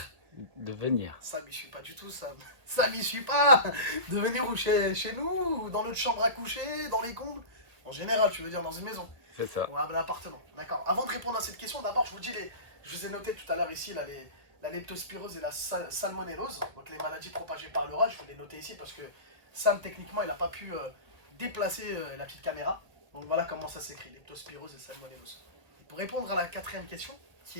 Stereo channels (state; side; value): late; left; 1.5 ms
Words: De venir. Ça m'y suis pas du tout, ça. Ça m'y suis pas. De venir ou chez nous, ou dans notre chambre à coucher, dans les combles. En général, tu veux dire dans une maison. C'est ça. Ou à l'appartement. D'accord. Avant de répondre à cette question, d'abord, je vous ai noté tout à l'heure ici la leptospirose et la salmonellose. Donc les maladies propagées par le rat. Je vous les noté ici parce que Sam, techniquement, il n'a pas pu déplacer la petite caméra. Donc voilà comment ça s'écrit, leptospirose et salmonellose. Et pour répondre à la quatrième question,